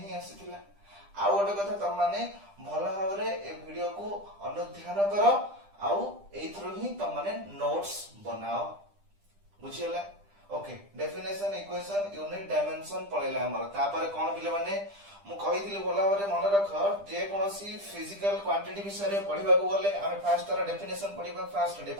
ही आसीथिला आ गोटे कथा तम माने भलो भाबरे ए वीडियो को अनुध्यान करो आउ एथरो ही तम माने नोट्स बनाओ बुझियला okay definition equation unit dimension पळेला हमर तापर कोन पिले माने मु कहिथिली भलो भाबरे मन रख जे कोनसी फिजिकल क्वांटिटी विषय रे पढिबा को गले हम फर्स्ट तार डेफिनेशन पढिबा फर्स्ट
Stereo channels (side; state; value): left; late; 10 ms